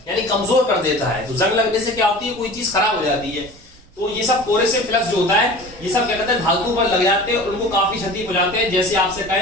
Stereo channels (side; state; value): both; normal; correlation 0.39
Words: यानी कमजोर कर देता है। तो जंग लगने से क्या होती है, कोई चीज खराब हो जाती है। तो ये सब कोरोसिव फ्लक्स जो होता है, ये सब क्या कहते हैं, धातु पर लग जाते हैं, उनको काफी क्षति पहुंचाते हैं। जैसे आपसे